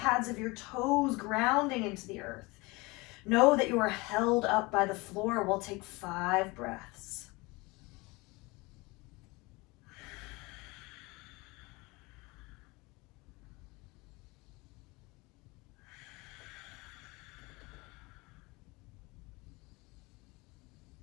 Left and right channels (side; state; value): right; quieter; 24.5 dB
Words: of your toes grounding into the earth. Know that you are held up by the floor. We'll take 5 breaths.